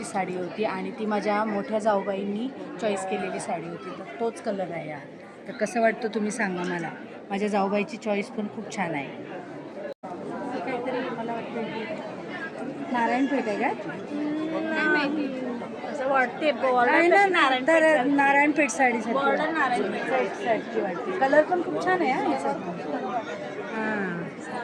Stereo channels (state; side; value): identical; both; correlation 1.00